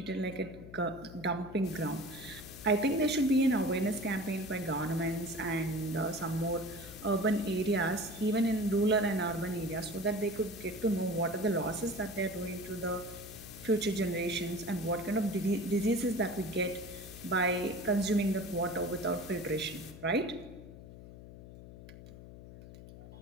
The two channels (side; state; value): left; noise; hum, 15 dB below the sound